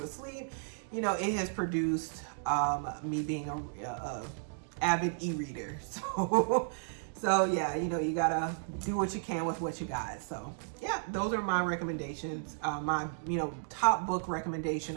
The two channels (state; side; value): silent; left; digital silence